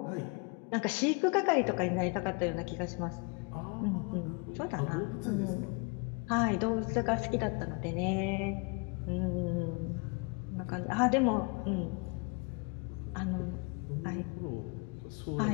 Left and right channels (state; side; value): quieter; right; 31.6 dB